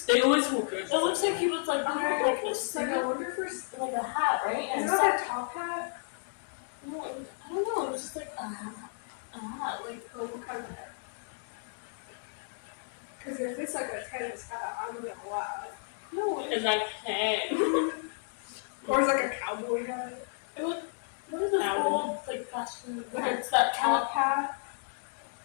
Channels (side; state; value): right; silent; digital silence